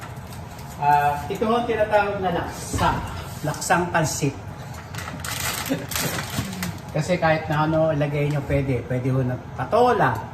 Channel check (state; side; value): identical; both; correlation 1.00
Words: Ito ang tinatawag na laksa. Laksang pansit. Kasi kahit na ano ilagay nyo pwede. Pwede ho na patola,